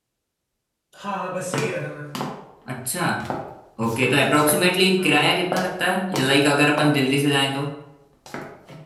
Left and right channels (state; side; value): identical; both; correlation 1.00